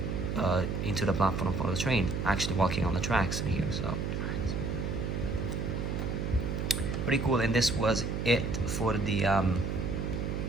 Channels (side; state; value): right; noise; hum, 2 dB below the sound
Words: into the platform for the train, actually walking on the tracks in here. So pretty cool. And this was it for the